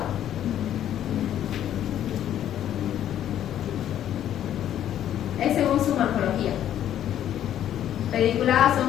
Es según su morfología. Pediculadas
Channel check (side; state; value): right; quieter; 11.0 dB